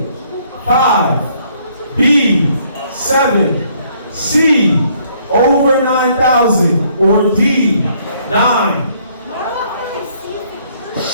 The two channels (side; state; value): both; inverted; correlation -0.65